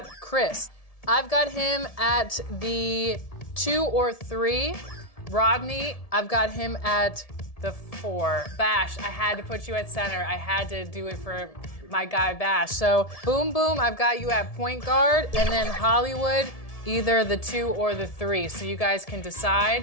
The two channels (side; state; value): right; late; 1.7 ms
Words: Chris. I've got him at the 2 or 3. Rodney, I've got him at the 4. Bash, I had to put you at center. I had to do it for my guy Bash. So Boom Boom, I've got you at point guard, and then Hollywood, either the 2 or the 3. So you guys can